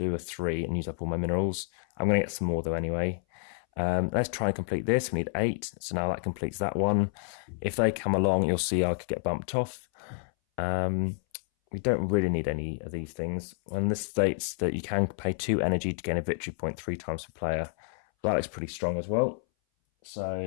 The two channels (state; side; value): silent; right; 58 dB below the other